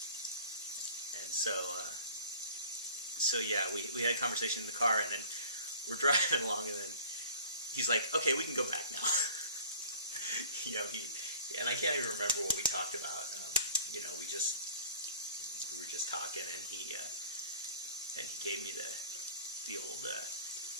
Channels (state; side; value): inverted; both; correlation -0.46